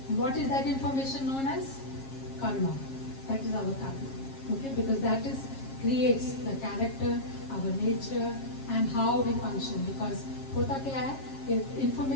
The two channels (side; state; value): right; late; 7.4 ms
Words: What is that information known as? Karma. That is our karma. Okay, because that creates the character, our nature, and how we function. Because hota kya hai?